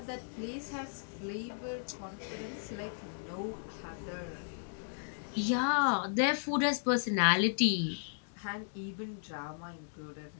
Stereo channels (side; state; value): right; silent; digital silence